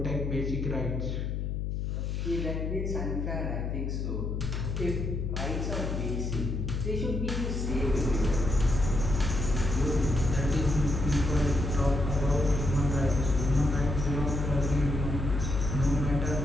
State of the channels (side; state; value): left; noise; hum, 2 dB below the sound